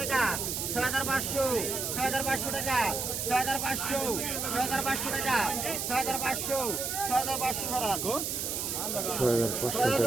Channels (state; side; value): noise; right; hiss, 2 dB below the sound